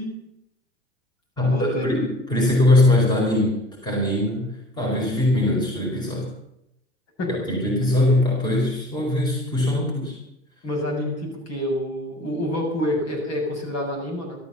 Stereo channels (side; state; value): both; normal; correlation 0.48